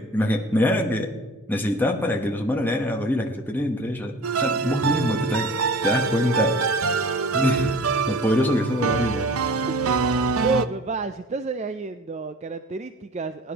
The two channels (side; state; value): both; normal; correlation 0.43